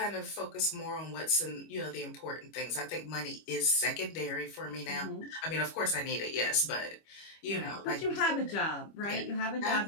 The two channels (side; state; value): right; late; 25 ms